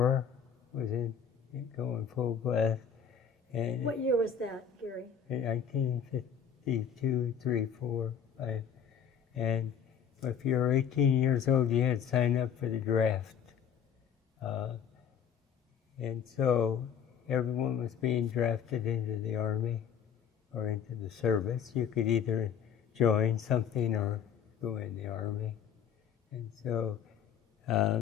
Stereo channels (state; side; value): quieter; right; 7.8 dB